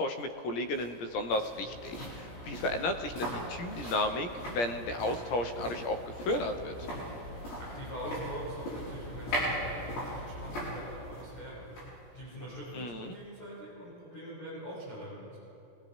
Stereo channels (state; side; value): late; right; 17 ms